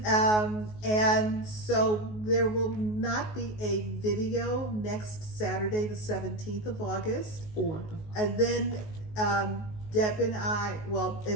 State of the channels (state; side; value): late; right; 19 ms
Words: And so there will not be a video next Saturday, the 17th of August. And then Deb and I,